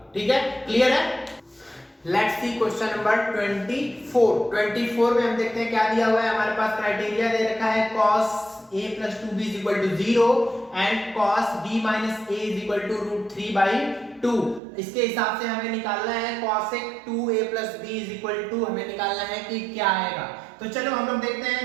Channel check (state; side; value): drops out; left; at 14.6 s